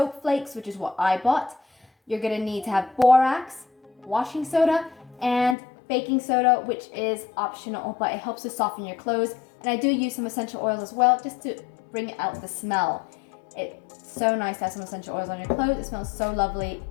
flakes, which is what I bought. You're going to need to have borax, washing soda, and baking soda, which is optional, but it helps to soften your clothes. And I do use some essential oils as well, just to bring out the smell. It's so nice to have some essential oils on your clothes. It smells so lovely.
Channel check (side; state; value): right; drops out; at 5.6 s